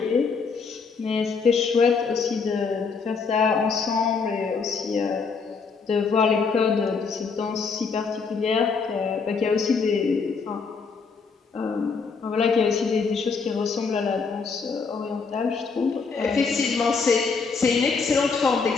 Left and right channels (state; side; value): quieter; right; 5.1 dB